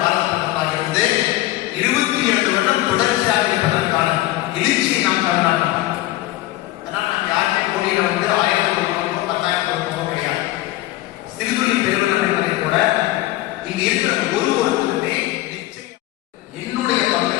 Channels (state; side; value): quieter; right; 16.7 dB